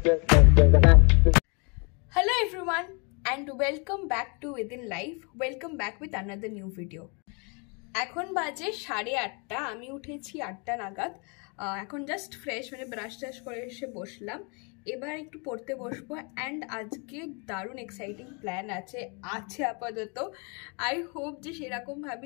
everyone and welcome back to Within Life. Welcome back with another new video. এখন বাজে 8:30, আমি উঠেছি 8টা নাগাদ। এখন জাস্ট ফ্রেশ মানে ব্রাশ টাশ করে এসে বসলাম। এবার একটু পড়তে বসবো অ্যান্ড আজকে দারুণ এক্সাইটিং প্ল্যান আছে আপাতত। আই হোপ যে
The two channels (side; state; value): right; quieter; 33.6 dB